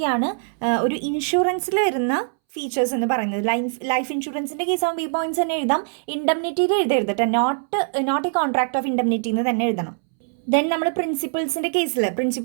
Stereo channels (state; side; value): silent; left; 64 dB below the other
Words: ഒരു ഇൻഷുറൻസിൽ വരുന്ന ഫീച്ചേഴ്സ് എന്ന് പറയുന്നത്. ലൈഫ് ഇൻഷുറൻസിൻ്റെ കേസ് ആകുമ്പോൾ ഈ പോയിന്റ്സ് തന്നെ എഴുതാം. ഇൻഡെംനിറ്റിയിൽ എഴുതരുതട്ടെ, not a contract of indemnity എന്ന് തന്നെ എഴുതണം. ദെൻ നമ്മൾ